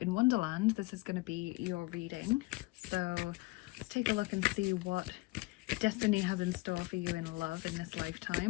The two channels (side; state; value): right; quieter; 22.9 dB